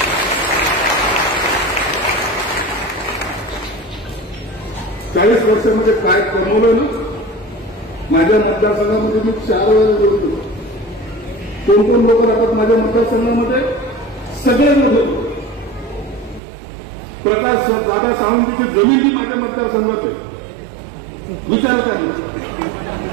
40 वर्षामध्ये काय कमवलं ना. माझ्या मतदारसंघामध्ये मी 4 वेळा बोलतो. कोण कोण लोक राहतात माझ्या मतदारसंघामध्ये? सगळे लोक. प्रकाश दादा सावंतीची जमीन ही माझ्या मतदारसंघात आहे. विचार काय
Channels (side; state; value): left; drops out; at 16.4 s